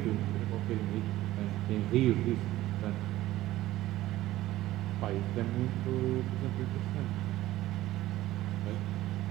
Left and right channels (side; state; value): left; quieter; 15.7 dB